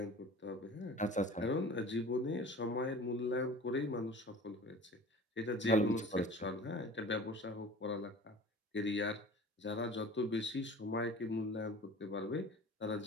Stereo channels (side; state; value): both; normal; correlation 0.41